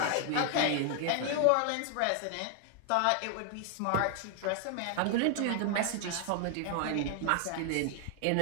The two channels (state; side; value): different; both; correlation 0.00